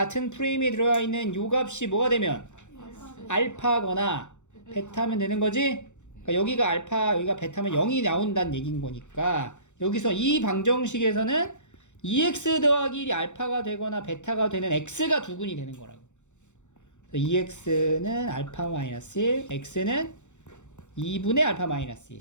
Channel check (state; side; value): late; right; 0.84 ms